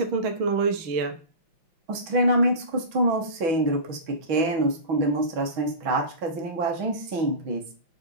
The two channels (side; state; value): left; late; 6.1 ms